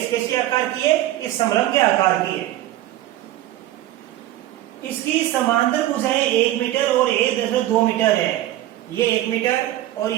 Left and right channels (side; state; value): left; quieter; 14.4 dB